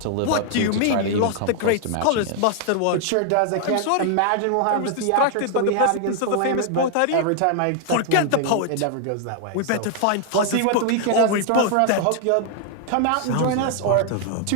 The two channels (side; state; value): both; different; correlation 0.00